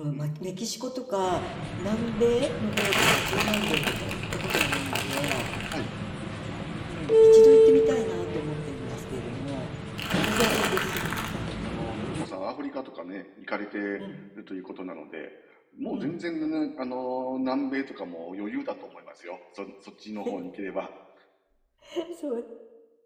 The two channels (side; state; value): both; identical; correlation 1.00